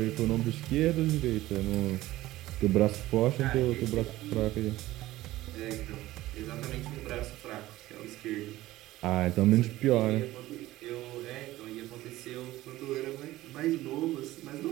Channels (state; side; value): quieter; left; 16.5 dB